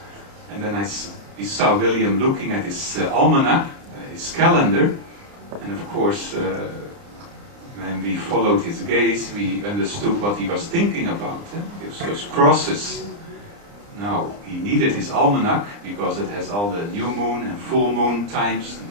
and then we saw William looking at his almanac, his calendar, and of course, when we followed his gaze, we understood what he was thinking about. Those crosses. Now, he needed his almanac because it has all the new moon and full moon times,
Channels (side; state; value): left; late; 29 ms